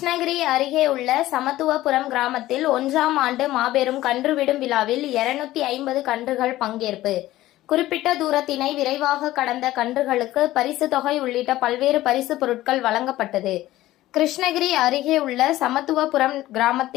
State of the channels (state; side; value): quieter; right; 15.7 dB